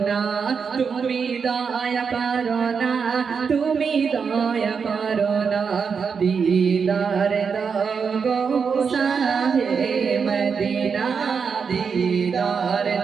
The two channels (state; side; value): quieter; left; 6.0 dB